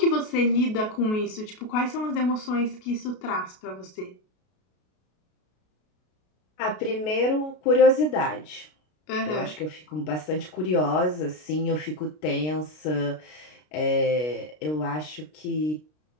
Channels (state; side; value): late; right; 33 ms